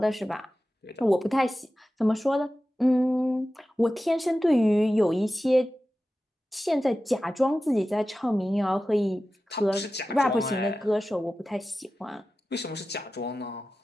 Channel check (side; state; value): both; normal; correlation 0.94